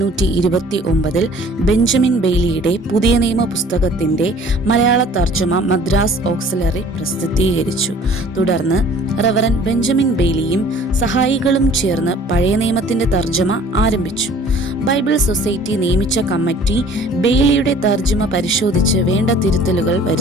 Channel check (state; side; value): normal; both; correlation 0.51